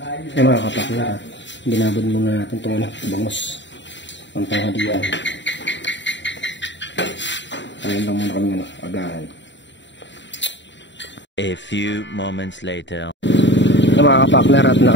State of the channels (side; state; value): right; late; 0.53 ms